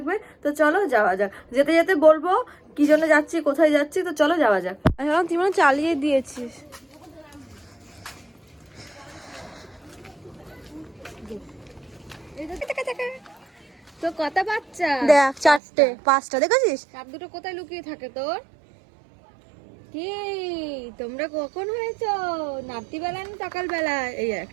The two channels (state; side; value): drops out; left; at 15.6 s